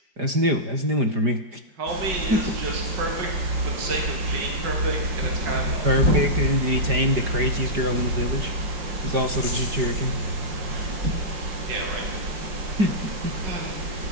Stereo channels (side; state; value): left; late; 5.0 ms